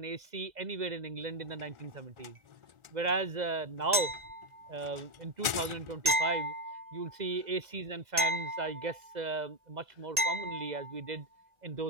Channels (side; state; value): left; late; 1.9 ms